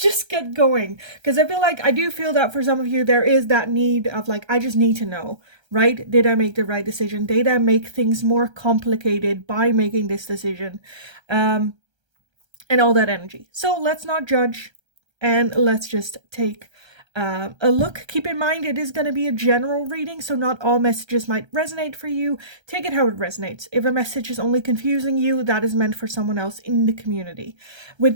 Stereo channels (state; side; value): late; left; 1.3 ms